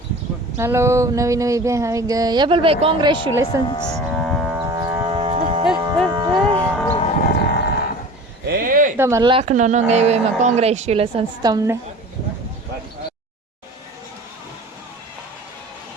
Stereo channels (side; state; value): both; normal; correlation 0.39